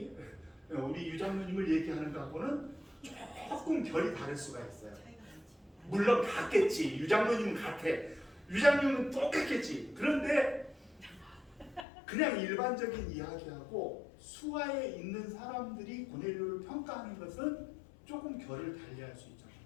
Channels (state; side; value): drops out; right; at 11.9 s